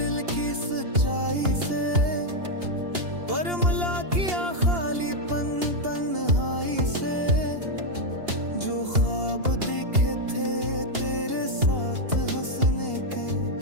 की सच्चाई से, पर मिला किया खालीपन तन्हाई से। जो ख्वाब दिखे थे तेरे साथ हंसने के,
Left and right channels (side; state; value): left; late; 2.8 ms